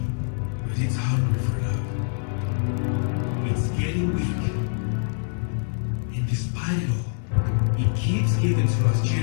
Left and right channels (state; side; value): silent; right; digital silence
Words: but it's hungry for love. It's getting weak. And despite it all, it keeps giving to us